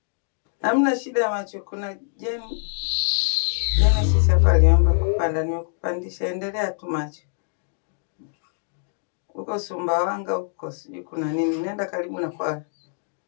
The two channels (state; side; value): silent; right; digital silence